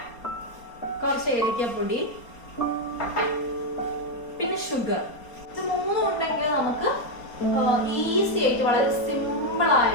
കുറച്ച് ഏലക്കപ്പൊടി, പിന്നെ ഷുഗർ. ഇത് 3 ഉണ്ടെങ്കിൽ നമുക്ക് ഈസി ആയിട്ട് വളരെ സിമ്പിൾ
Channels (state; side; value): late; right; 4.3 ms